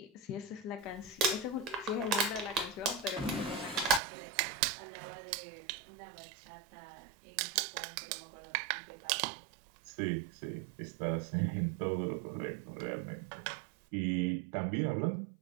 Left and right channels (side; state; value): left; drops out; at 4.0 s